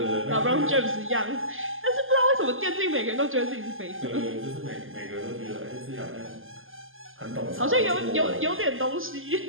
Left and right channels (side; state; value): left; late; 0.59 ms